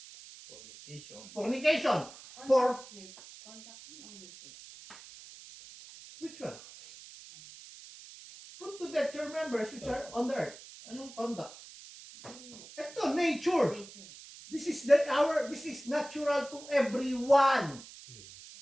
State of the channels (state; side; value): noise; right; hiss, 17 dB below the sound